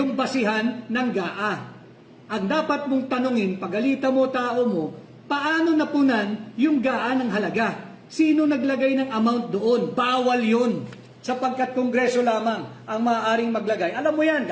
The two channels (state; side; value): identical; both; correlation 1.00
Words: basihan ng GAA. Ang dapat mong tanungin, pagalitan mo tao mo, paano napunan yung GAA ng halaga? Sino naglagay ng amount doon? Bawal yun. Sapagkat kongreso lamang ang maaaring maglagay. Alam mo yan,